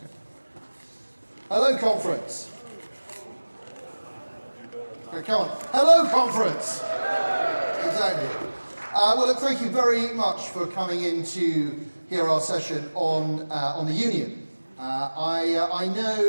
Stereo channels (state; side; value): inverted; both; correlation -1.00